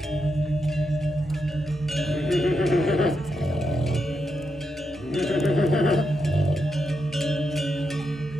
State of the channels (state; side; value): normal; both; correlation 0.84